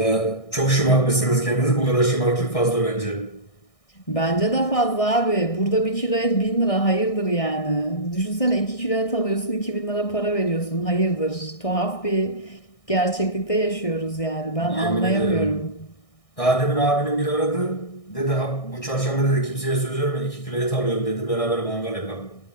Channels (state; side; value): late; right; 1.6 ms